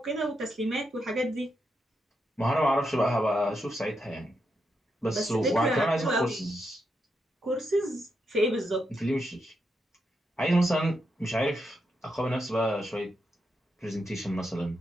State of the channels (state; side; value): normal; both; correlation 0.83